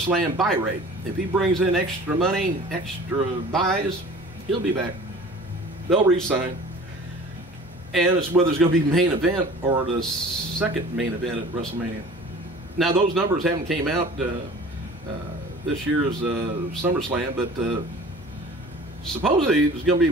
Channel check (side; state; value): both; normal; correlation 0.44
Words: buy rate. If he brings in extra money, extra buys, he'll be back. They'll re-sign. And it's whether it's going to be main event or the second main event at WrestleMania. Now, those numbers haven't came out this year's SummerSlam, but supposedly it's going to